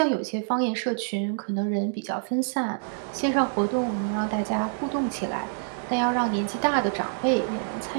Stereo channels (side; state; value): left; silent; 60 dB below the other